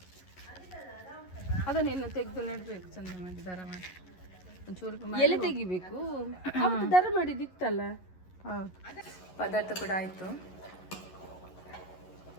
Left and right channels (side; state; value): right; late; 11 ms